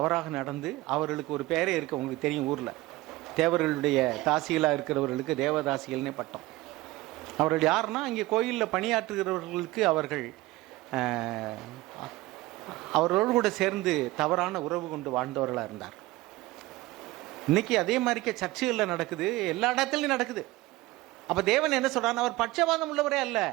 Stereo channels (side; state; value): left; quieter; 19.0 dB